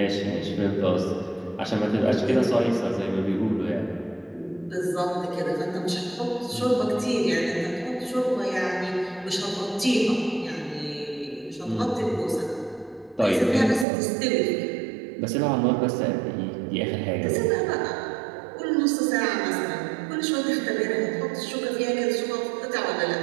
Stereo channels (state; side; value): drops out; left; at 13.9 s